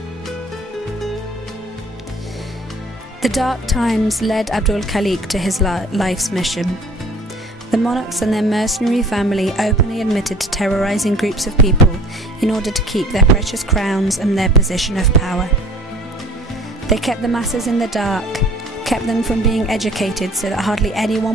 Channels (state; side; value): normal; both; correlation 0.50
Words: The dark times led Abdul Khaliq to his life's mission. The monarchs and their mercenary family openly admitted to terrorizing groups of people in order to keep their precious crowns and their position of power. They kept the masses in the dark, kept them from being educated so that hardly